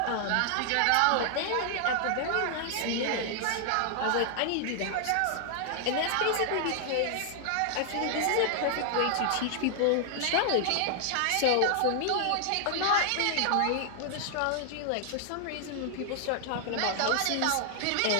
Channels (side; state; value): both; different; correlation 0.00